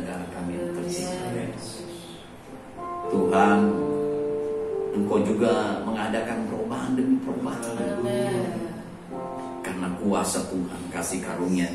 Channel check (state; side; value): identical; both; correlation 1.00